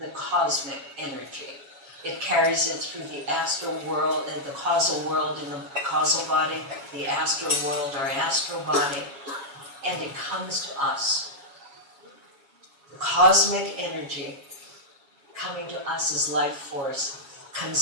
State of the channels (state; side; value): late; left; 7.3 ms